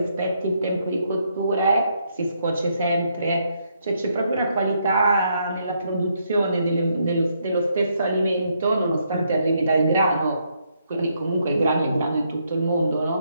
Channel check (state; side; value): inverted; both; correlation -0.75